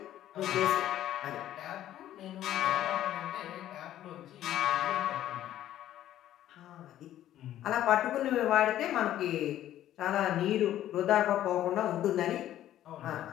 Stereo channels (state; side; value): quieter; right; 12.5 dB